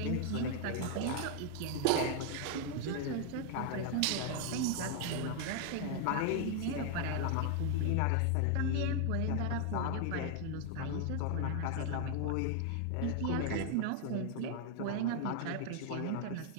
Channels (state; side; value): different; both; correlation 0.00